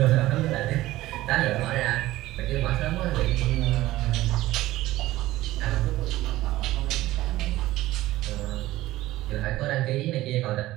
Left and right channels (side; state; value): left; quieter; 16.5 dB